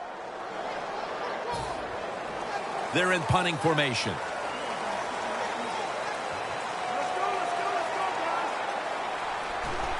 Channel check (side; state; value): both; identical; correlation 1.00